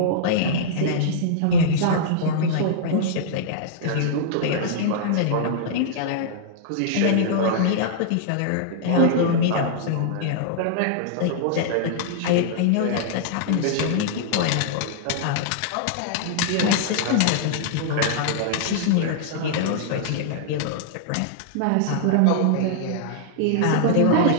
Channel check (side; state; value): both; different; correlation -0.02